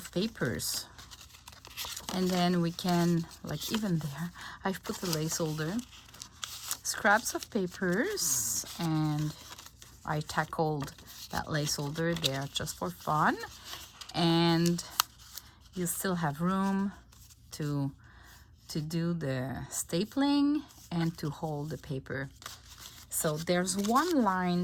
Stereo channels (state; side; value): identical; both; correlation 1.00